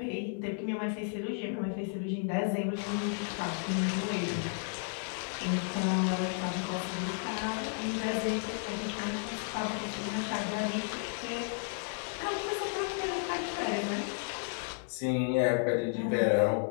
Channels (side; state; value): right; silent; 56 dB below the other